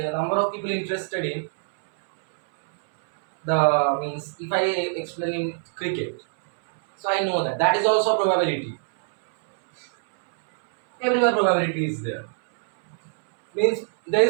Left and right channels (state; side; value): silent; left; 63 dB below the other